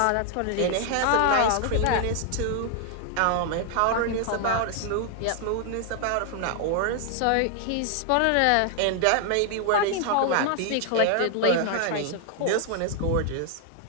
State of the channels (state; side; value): different; both; correlation 0.00